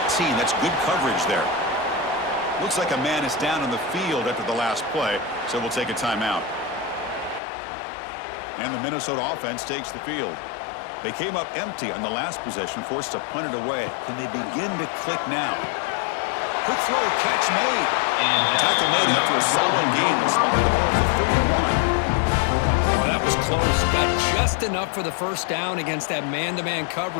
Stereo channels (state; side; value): drops out; right; at 7.4 s